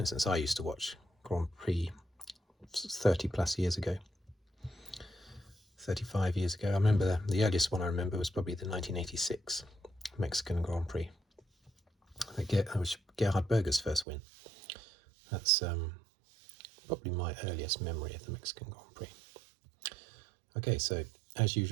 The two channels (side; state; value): left; drops out; at 14.1 s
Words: I used to watch Grand Prix 30 plus years ago, 35 years ago. I remember the earliest one I remember was probably the 1986 Mexican Grand Prix. That was Gerhard Berger's first win. That's probably my earliest memory of the Mexican Grand Prix. Okay, so as